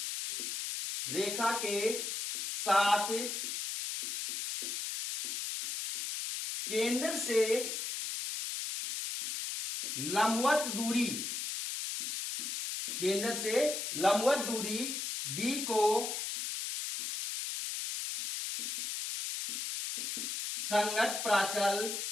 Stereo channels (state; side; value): noise; left; hiss, 3 dB below the sound